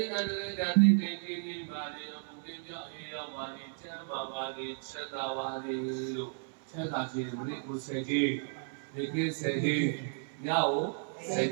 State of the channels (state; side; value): silent; left; 55 dB below the other